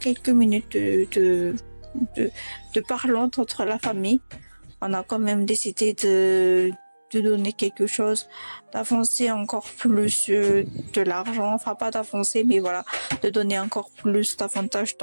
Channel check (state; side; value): inverted; both; correlation -1.00